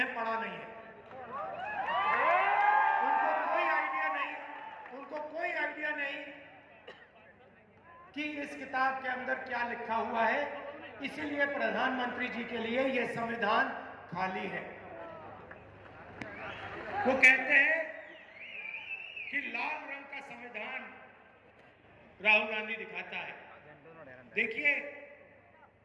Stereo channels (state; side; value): identical; both; correlation 1.00